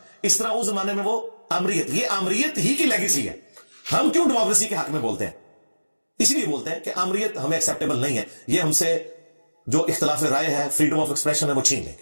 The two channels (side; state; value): both; inverted; correlation -1.00